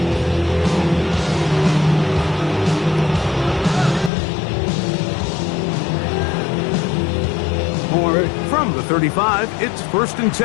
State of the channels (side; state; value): right; drops out; at 4.1 s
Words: From the 35, it's 1st and